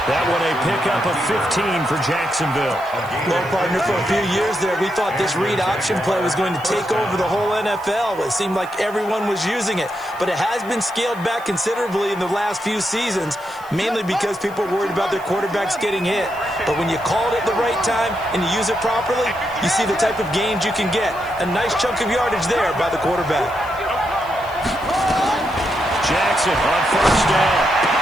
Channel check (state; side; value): noise; right; hiss, 24 dB below the sound